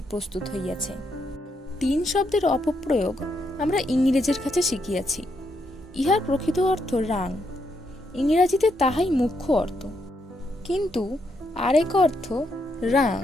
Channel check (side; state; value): both; normal; correlation 0.78